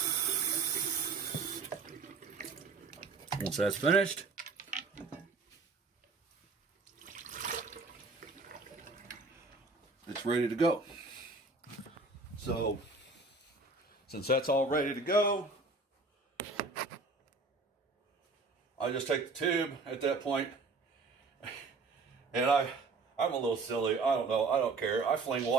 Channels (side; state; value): left; quieter; 3.9 dB